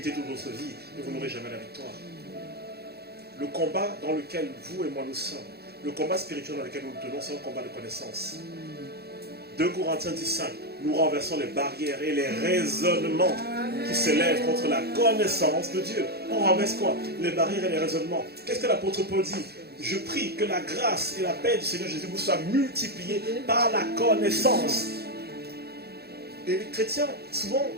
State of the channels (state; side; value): late; left; 0.46 ms